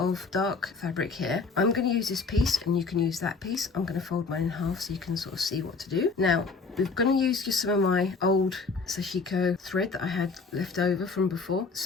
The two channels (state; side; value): quieter; right; 4.4 dB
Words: dark fabric here. I'm going to use this piece and you can use that piece. I'm going to fold mine in half so you can sort of see what to do. Now, we're going to use just some of my old sashiko thread that I had left over from before.